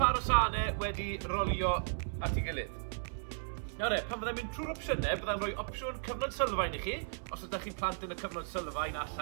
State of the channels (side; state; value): left; silent; 54 dB below the other